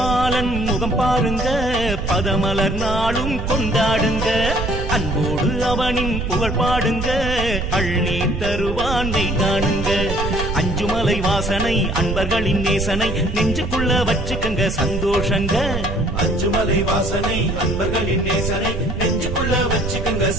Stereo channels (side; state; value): right; noise; rumble, 4 dB below the sound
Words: முகம் பாருங்க பதமலர் நாளும் கொண்டாடுங்க. அன்போடு அவனின் புகழ் பாடுங்க அள்ளி தருவானை காணுங்க. அஞ்சுமலை வாசனை அன்பர்களின் நேசனை நெஞ்சுக்குள்ள வச்சுக்கங்க சந்தோஷங்க. அஞ்சுமலை வாசனை அன்பர்களின் நேசனை நெஞ்சுக்குள்ள வச்சுக்கங்க